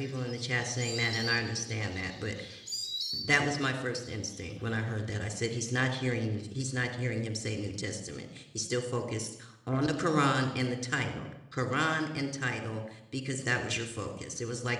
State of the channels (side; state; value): both; identical; correlation 1.00